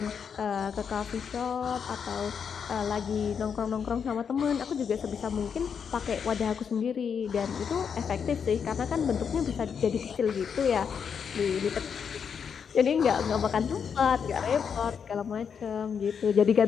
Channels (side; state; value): right; quieter; 6.9 dB